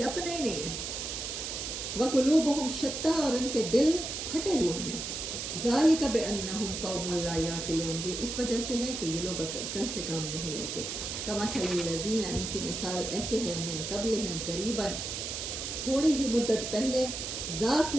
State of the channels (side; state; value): right; noise; hiss, 5 dB below the sound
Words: اپنے ہی نہیں ہیں، وقلوبہم شتیٰ، اور ان کے دل پھٹے ہوئے ہیں، ذالک بأنہم قوم لا یعقلون، یہ اس وجہ سے ہے کہ یہ لوگ عقل سے کام نہیں لیتے، کمثل الذین، ان کی مثال ایسے ہیں، من قبلہم، قریباً، تھوڑی ہی مدت پہلے،